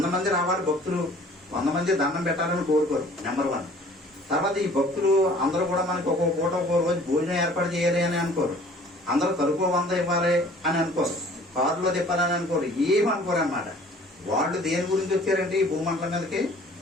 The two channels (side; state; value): both; normal; correlation 0.51